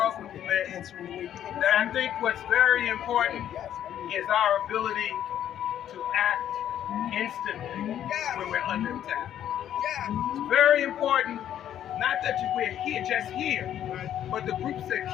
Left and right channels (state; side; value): quieter; right; 10.7 dB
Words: movement, that I think what's very important is our ability to act instantly when we're under attack. It's very important, not that we're here, just here, but the groups that